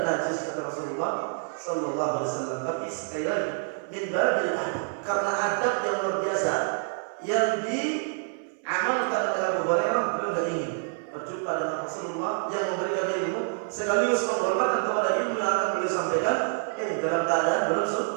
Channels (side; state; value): left; silent; 59 dB below the other